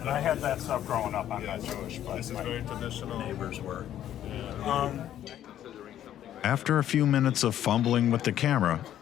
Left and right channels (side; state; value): right; quieter; 11.4 dB